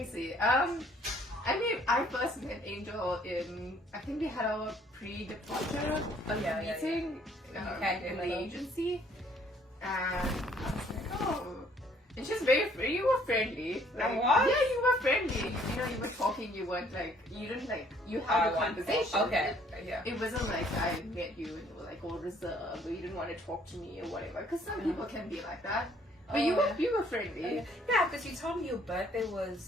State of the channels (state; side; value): normal; both; correlation 0.61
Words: see. I first met Angel in, I think we had our pre-departure meeting in the agency, and I was like, oh, and she's very free. You were friendly. Like, what? Yeah, you were friendly. You know, you were talking. You weren't like, you didn't like, you had a conversation. Okay. Yeah. It wasn't like I met you and you were like all reserved, or you didn't want to talk to me or whatever. Because some people can be like that. But you were friendly. Yeah, because you told me your birthday